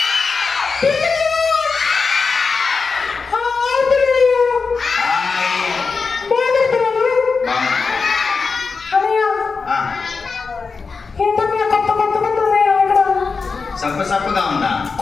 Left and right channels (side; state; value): right; quieter; 4.7 dB